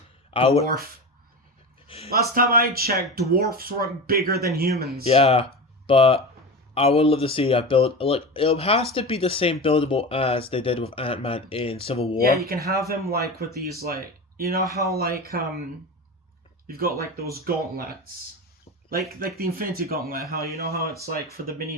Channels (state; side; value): normal; both; correlation 0.26